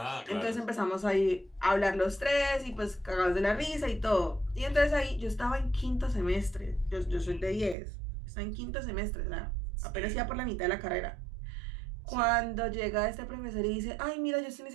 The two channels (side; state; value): left; drops out; at 7.8 s